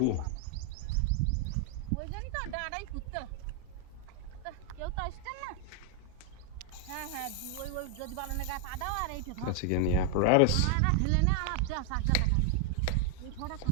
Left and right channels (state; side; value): different; both; correlation 0.00